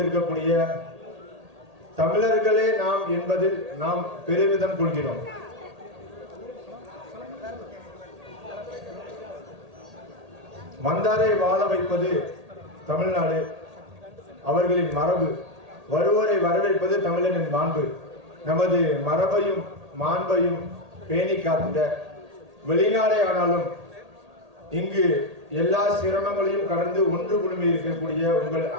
தமிழர்களே நாம் என்பதில் நாம் பெருமிதம் கொள்கிறோம். வந்தாரை வாழ வைப்பது தமிழ்நாடு, அவர்களின் மரபு. வருவோரை வரவேற்பது தமிழனின் மாண்பு. நமது மரபையும் மாண்பையும் பேணி காத்திட வெளிநாடே ஆனாலும் இங்கு எல்லா சிரமங்களையும் கடந்து ஒன்று குழுமி இருக்கக்கூடிய உங்கள்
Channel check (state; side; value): late; left; 1.8 ms